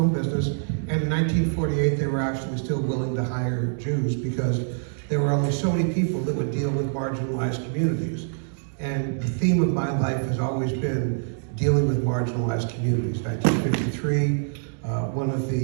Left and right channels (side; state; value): left; silent; digital silence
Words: business. And in 1948, they were actually still willing to hire Jews because there were only so many people that would deal with marginalized communities. And the theme of my life has always been dealing with marginalized communities. 1953, one of